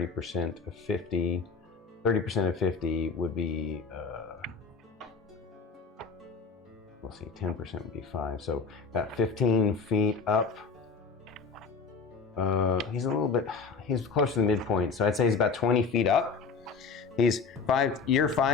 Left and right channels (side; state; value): right; quieter; 5.0 dB